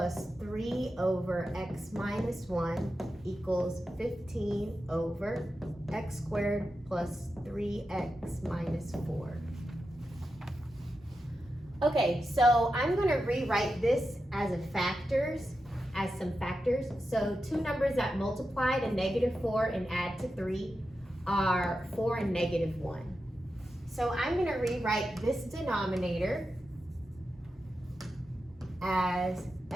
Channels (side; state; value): both; normal; correlation 0.90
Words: 3 over x minus 1 equals 15 over x squared plus 3x minus 4. Okay, so I'm going to rewrite this as some factors. So two numbers that multiply to negative 4 and add to 3 are 4 and negative 1. So I'm going to rewrite this denominator as